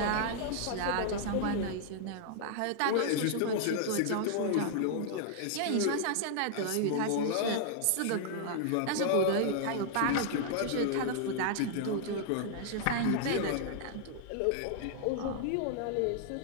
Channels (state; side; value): different; both; correlation -0.01